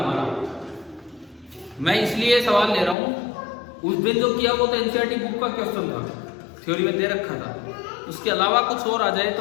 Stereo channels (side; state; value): right; drops out; at 3.0 s